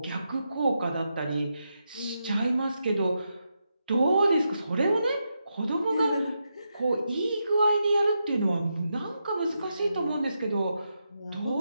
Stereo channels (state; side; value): inverted; both; correlation -0.85